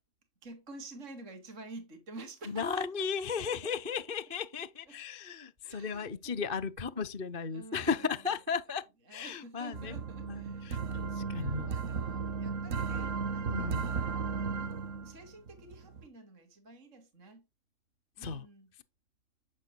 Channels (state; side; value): late; left; 2.6 ms